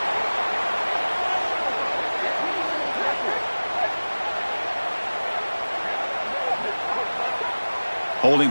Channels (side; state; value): both; inverted; correlation -1.00